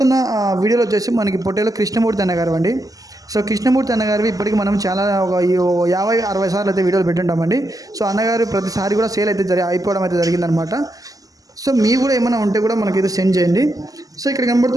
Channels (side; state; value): left; late; 0.17 ms